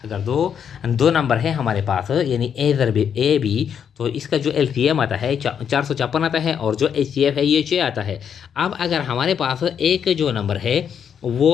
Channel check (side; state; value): right; quieter; 7.9 dB